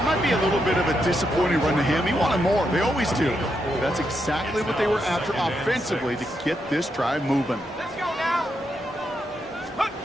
might be a little bit of a disappointing run to him. He wanted more. They always do. That's exactly what they were after offensively to get this drive moving. Let's go now.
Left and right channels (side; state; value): both; normal; correlation 0.82